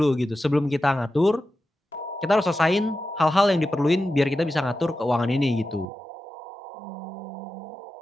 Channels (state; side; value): drops out; left; at 5.9 s